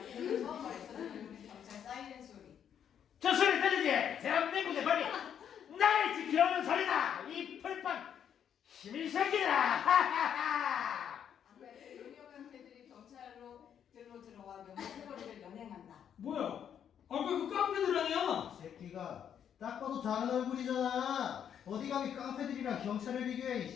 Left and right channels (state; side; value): quieter; right; 8.8 dB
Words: 이들은 더 벌써 들리는 경찰 사이렌 소리. 저 소리 들리지? 대한민국의 법이 나를 지켜오는 소리다. 이 풀판 시민 새끼들아. 하하하. 아무래도 용역 깡패들이 경찰로 들어와 명재 패거리를 연행한다. 뭐야? 아까 그 깡패들 아니야? 새끼가 딱 봐도 다른 얼굴이잖아. 어디 감히 깡패들이랑 경찰을 비교해.